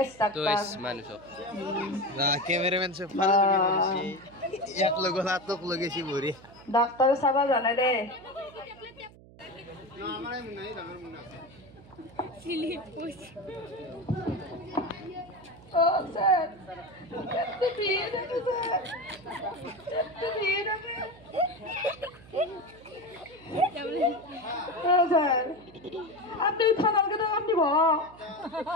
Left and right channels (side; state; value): right; noise; hum, 22 dB below the sound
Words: তো ডাক্তার মানুষ না ক্যামেরাম্যান সে ফালা করেছি এক লগ হাতক লগেছি ভরি ডাক্তার সাবা জানে রে না আমারে নাই আমার মনে আছে সিলিপ পুষ Oh, sir. Kette biye de sir. Kette biye de. Oh, sir. Apni থানার কে আপনি